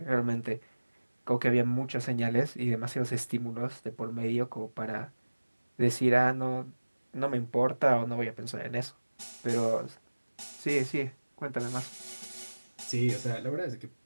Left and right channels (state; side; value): inverted; both; correlation -1.00